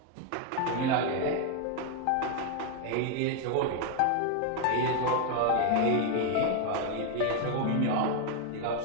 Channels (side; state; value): both; different; correlation 0.01